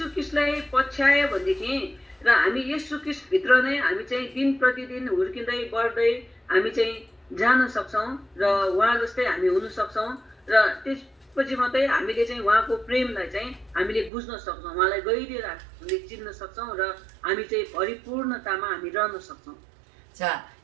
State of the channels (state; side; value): drops out; left; at 14.1 s